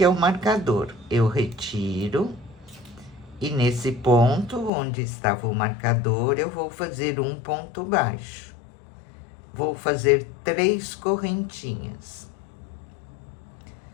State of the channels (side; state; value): right; drops out; at 4.7 s